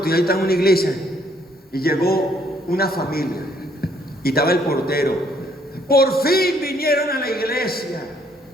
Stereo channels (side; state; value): both; normal; correlation 0.66